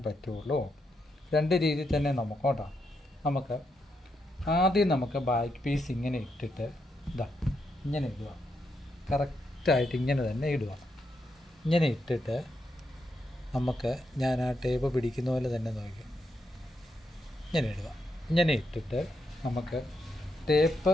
പറ്റുള്ളൂ. 2 രീതിയിൽ തന്നെ നമുക്ക് ആദ്യം ബാക്ക് പീസ് ഇങ്ങനെ ഇട്ടിട്ട് ഇങ്ങനെ ഇടുക. കറക്റ്റായിട്ട് ഇങ്ങനെ തന്നെ ഇടുക. ഇങ്ങനെ ഇട്ടിട്ട് ഞാൻ ആ ടേപ്പ് പിടിക്കുന്ന പോലെ തന്നെ നോക്കി ഇങ്ങനെ ഇടുക. ഇങ്ങനെ ഇട്ടിട്ട് ടേപ്പ്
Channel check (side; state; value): both; normal; correlation 0.81